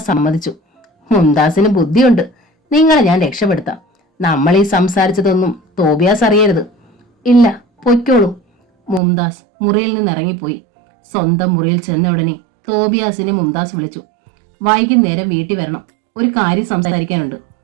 സമ്മതിച്ചു. മുംതാസിന് ബുദ്ധിയുണ്ട്. നിങ്ങളെ ഞാൻ രക്ഷപ്പെടുത്താം. നമ്മൾ ഈ സംസാരിച്ചതൊന്നും തോബിയാസ് അറിയരുത്. ഇല്ല, പൊയ്ക്കോളൂ. മുംതാസ് മുറിയിൽ നിന്ന് ഇറങ്ങിപ്പോയി. സ്വന്തം മുറിയിൽ ചെന്ന ഉടനെ തോബിയാസിനെ മുംതാസ് വിളിച്ചു. വൈകുന്നേരം വീട്ടിൽ വരണം, ഒരു കാര്യം സംസാരിക്കാനുണ്ട്.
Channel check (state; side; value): drops out; left; at 9.0 s